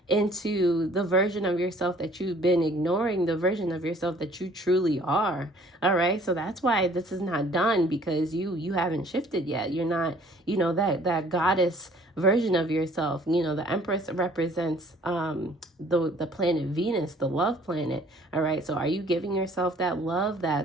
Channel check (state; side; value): normal; both; correlation 0.56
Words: into the version of yourself that you've been ignoring, the version of yourself that you truly are. All right, so that's why this is not done, because you haven't shifted yet. You're not, you know, that goddess version of yourself. You know, the Empress represents the planet Venus, the love planet. All right, so are you giving yourself that love,